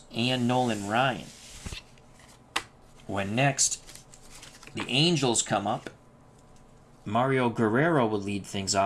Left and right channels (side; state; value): both; identical; correlation 1.00